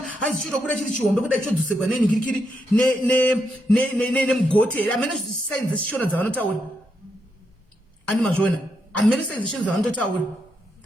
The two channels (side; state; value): both; normal; correlation 0.81